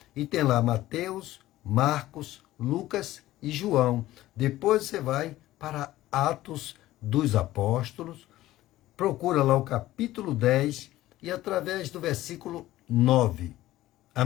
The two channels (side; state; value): right; quieter; 15.6 dB